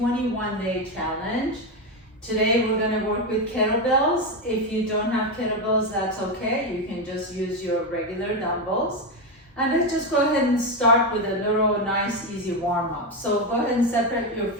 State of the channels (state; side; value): normal; both; correlation 0.10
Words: challenge. Today we're going to work with kettlebells. If you don't have kettlebells, that's okay. You can just use your regular dumbbells. And let's just go ahead and start with a little nice easy warm up. So go ahead and separate your